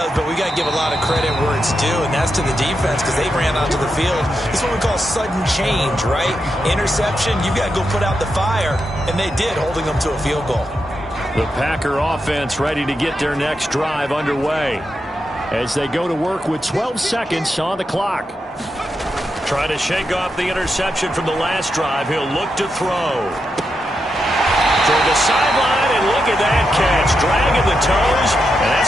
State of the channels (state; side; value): normal; both; correlation 0.86